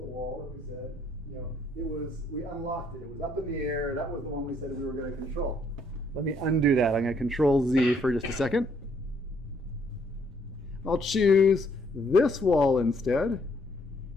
wall that we said, we unlocked it. It was up in the air. That was the one we said we were going to control. Let me undo that. I'm going to Control Z for just a second. I'll choose this wall instead.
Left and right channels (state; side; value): normal; both; correlation 0.68